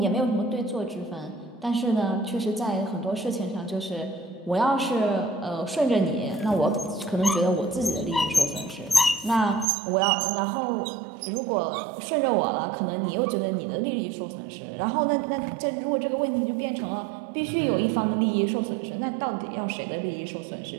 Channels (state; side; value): drops out; left; at 9.7 s